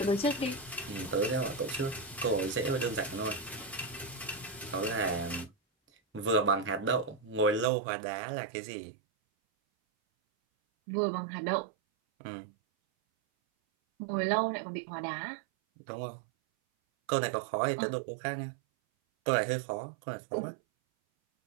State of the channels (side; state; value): left; drops out; at 7.7 s